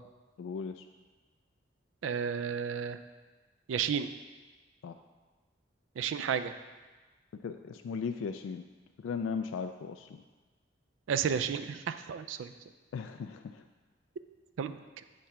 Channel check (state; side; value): quieter; left; 3.3 dB